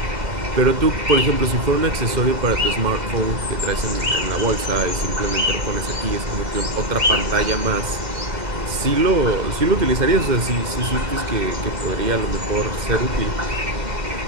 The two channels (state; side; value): late; left; 2.1 ms